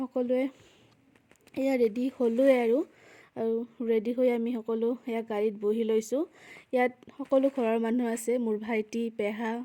সকলোৱে এয়া ৰেডি হ'লোৱে আৰু ৰেডি হৈ আমি সকলো এয়া গাড়ীত বহি লৈছোঁ। ইয়াত সকলো ঘৰৰ মানুহ আছে, মোৰ ভাইটি, পেহা,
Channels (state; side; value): identical; both; correlation 1.00